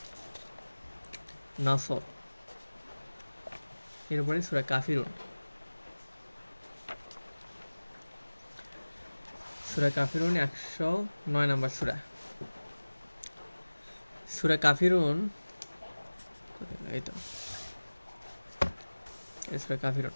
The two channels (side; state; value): both; inverted; correlation -1.00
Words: নাসর। এরপরে সূরা কাফিরুন। সূরা কাফিরুন 109 নম্বর সূরা। সূরা কাফিরুন, এই তো এই সূরা কাফিরুন।